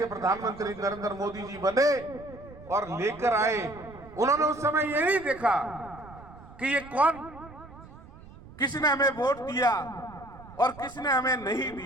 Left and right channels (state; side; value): noise; right; rumble, 19 dB below the sound